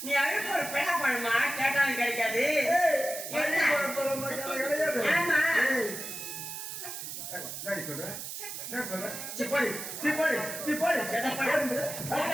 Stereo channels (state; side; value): noise; right; hiss, 7 dB below the sound